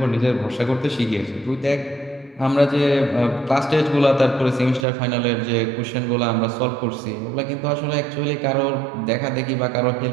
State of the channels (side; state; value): left; drops out; at 4.9 s